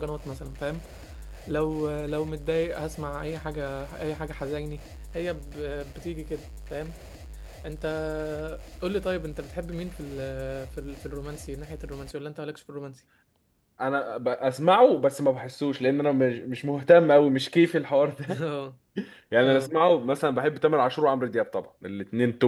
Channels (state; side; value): identical; both; correlation 1.00